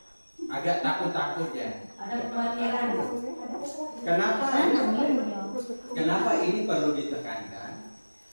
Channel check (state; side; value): inverted; both; correlation -1.00